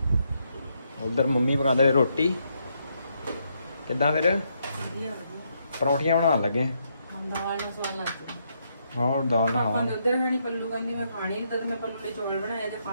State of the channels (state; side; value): inverted; both; correlation -0.77